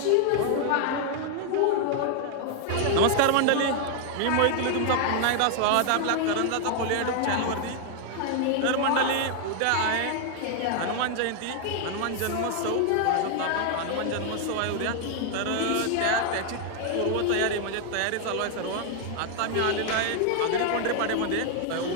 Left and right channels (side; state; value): both; different; correlation 0.00